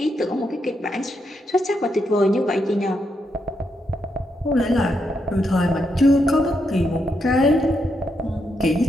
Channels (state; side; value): normal; both; correlation 0.81